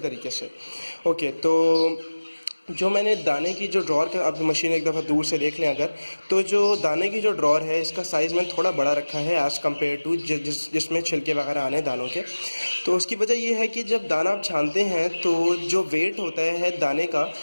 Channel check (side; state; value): both; inverted; correlation -1.00